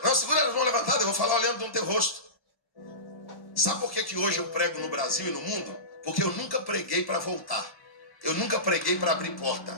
as mãos levantadas, eu vou falar olhando no teu rosto. Sabe por que hoje eu prego no Brasil e no mundo? Porque eu nunca preguei para voltar. Eu nunca preguei para abrir porta.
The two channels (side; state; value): right; late; 1.1 ms